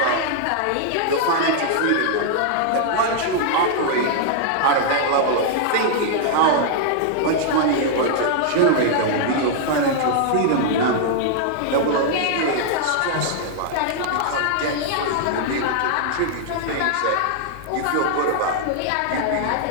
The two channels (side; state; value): both; different; correlation -0.01